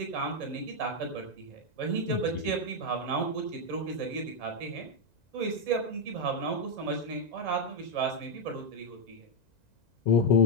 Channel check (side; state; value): right; late; 1.9 ms